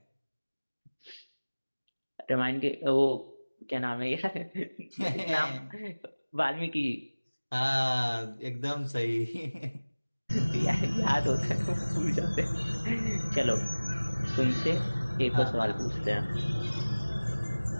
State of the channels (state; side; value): inverted; both; correlation -1.00